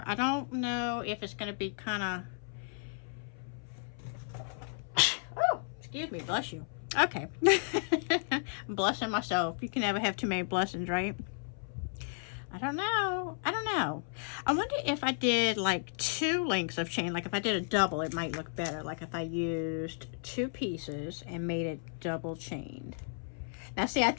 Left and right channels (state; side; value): silent; right; 55 dB below the other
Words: I don't know if it's going to be kind of oh, excuse me, bless you. Okay. I'm blessing myself. You can never have too many blessings, right? I don't know. I don't know. I wonder if I did like 2 links of chain. Like if I did a double, it might look better. Like if I used 2 pieces and made it double chained. Now see, I